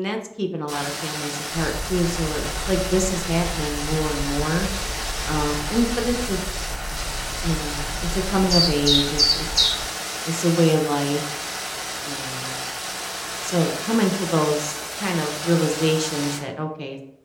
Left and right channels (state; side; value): identical; both; correlation 1.00